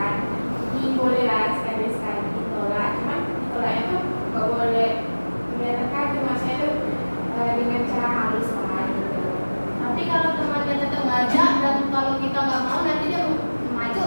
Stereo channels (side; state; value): both; inverted; correlation -1.00